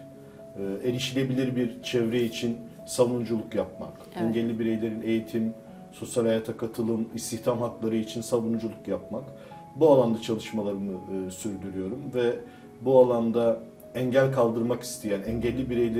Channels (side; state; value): both; identical; correlation 1.00